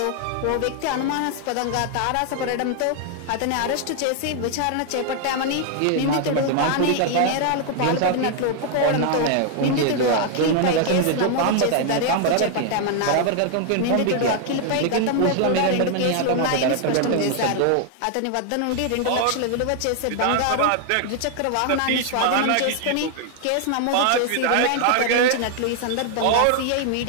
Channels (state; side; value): different; both; correlation 0.00